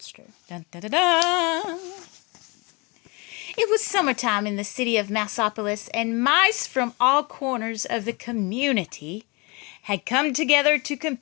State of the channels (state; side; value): quieter; right; 28.0 dB